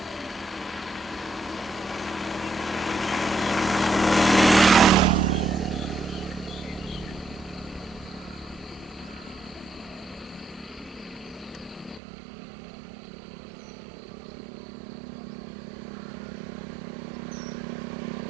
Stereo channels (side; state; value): left; drops out; at 12.0 s